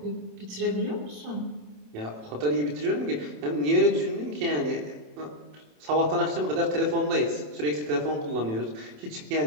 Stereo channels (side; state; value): left; late; 27 ms